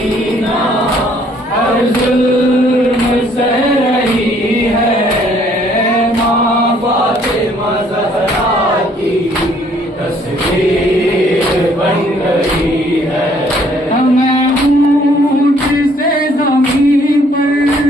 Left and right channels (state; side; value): normal; both; correlation 0.63